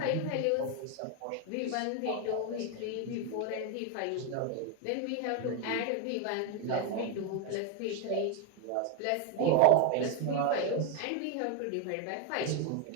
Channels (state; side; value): different; both; correlation 0.02